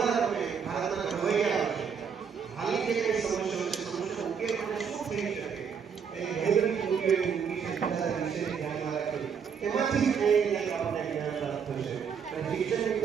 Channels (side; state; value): left; quieter; 6.8 dB